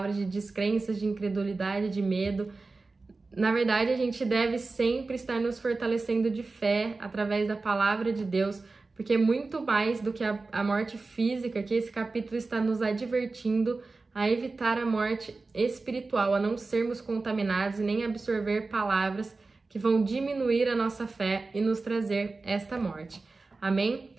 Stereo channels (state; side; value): quieter; left; 3.7 dB